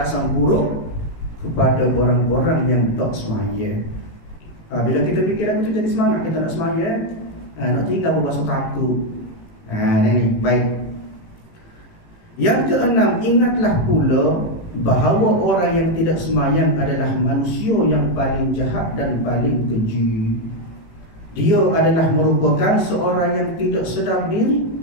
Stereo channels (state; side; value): late; right; 18 ms